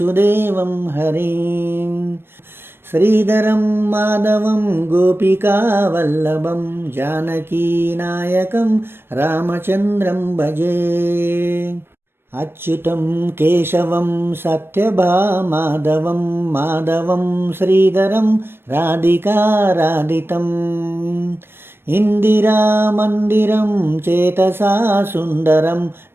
हरिं श्रीधरं माधवं गोपिकावल्लभं जानकीनायकं रामचन्द्रं भजे। अच्युतं केशवं सत्यभामाधवं माधवं श्रीधरं राधिकाराधितम् इंदिरामन्दिरं चेतसा सुन्दरं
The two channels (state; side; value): late; left; 0.11 ms